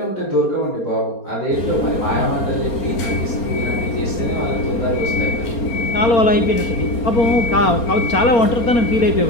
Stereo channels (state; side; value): late; right; 4.3 ms